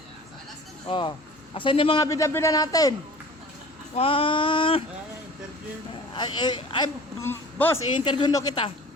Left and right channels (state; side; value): normal; both; correlation 0.43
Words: Oh. Asan yung mga bida-bida natin? Interview. Boss, i-interview no kita.